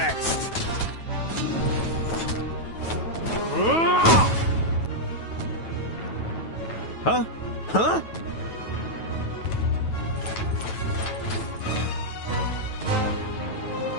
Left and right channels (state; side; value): late; right; 9.2 ms